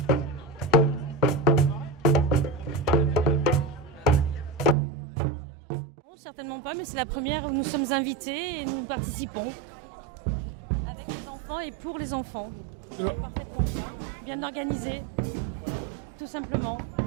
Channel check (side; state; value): left; drops out; at 4.8 s